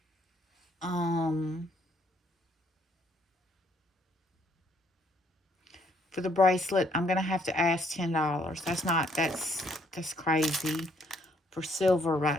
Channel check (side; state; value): both; normal; correlation 0.68